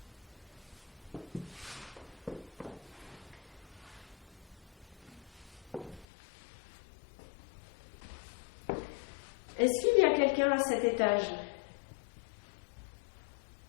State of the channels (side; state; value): right; drops out; at 6.1 s